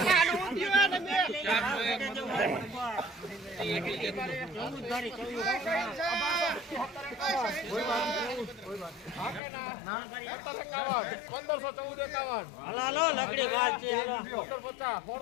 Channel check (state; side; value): drops out; right; at 9.4 s